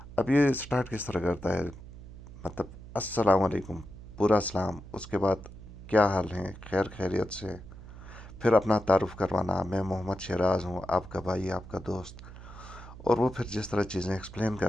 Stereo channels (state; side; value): noise; right; hum, 15 dB below the sound